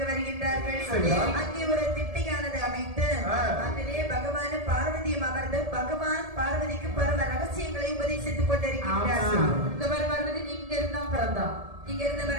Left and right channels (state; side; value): late; left; 1.7 ms